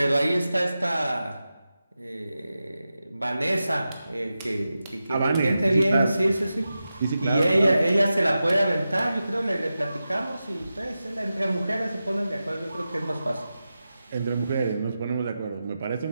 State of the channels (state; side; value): inverted; both; correlation -0.92